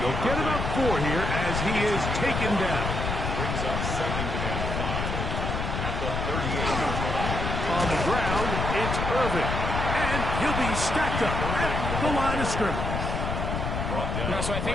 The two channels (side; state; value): left; noise; rumble, 2 dB below the sound